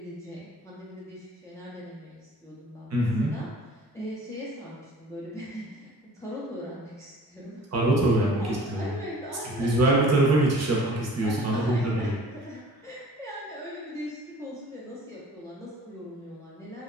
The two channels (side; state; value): both; normal; correlation 0.48